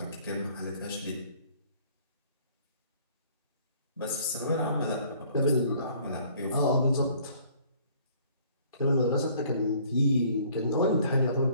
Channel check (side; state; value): both; inverted; correlation -0.57